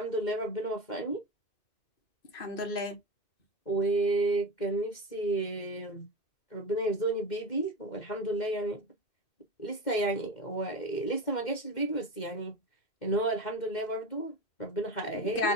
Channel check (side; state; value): right; late; 2.1 ms